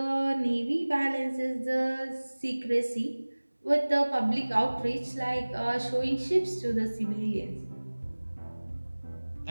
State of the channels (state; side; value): inverted; both; correlation -1.00